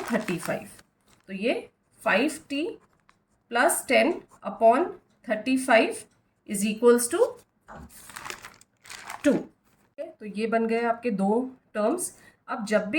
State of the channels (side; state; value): both; identical; correlation 1.00